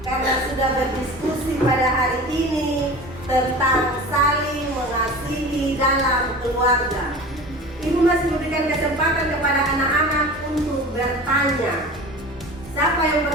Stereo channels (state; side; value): normal; both; correlation 0.36